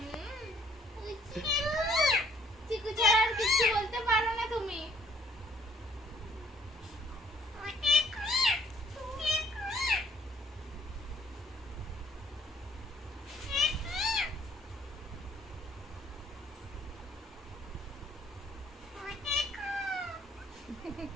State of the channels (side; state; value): both; normal; correlation 0.63